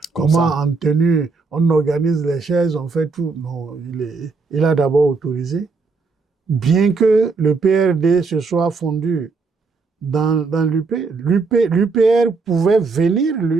en tenue, on organise les chaises, on fait tout. Non, il a d'abord autorisé. Bien que le PRD se soit fondu dans l'UP, l'UPR pouvait venir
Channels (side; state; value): left; quieter; 4.3 dB